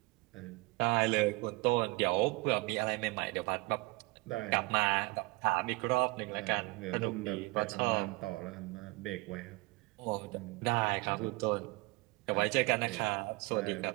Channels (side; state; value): left; quieter; 24.3 dB